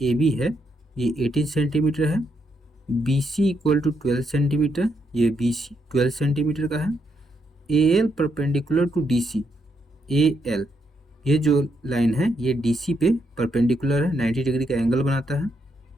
AB है ये 18 सेंटीमीटर है। BC = 12 centimetre. ये BC 12 सेंटीमीटर का है। AL perpendicular to DC। AL ये जो लाइन है ये DC पे परपेंडिकुलर है, 90 डिग्री का एंगल बनाता है।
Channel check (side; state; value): both; normal; correlation 0.78